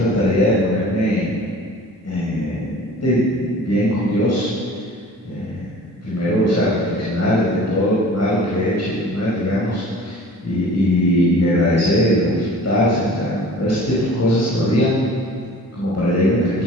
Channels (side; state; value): both; normal; correlation 0.45